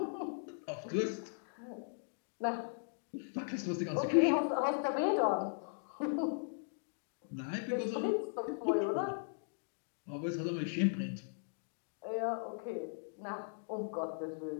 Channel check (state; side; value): silent; right; digital silence